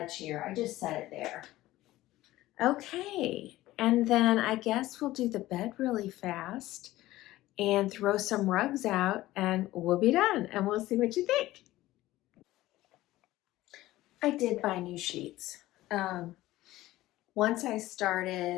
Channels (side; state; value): right; quieter; 16.5 dB